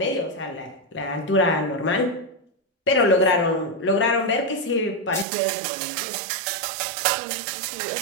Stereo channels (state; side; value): drops out; left; at 5.2 s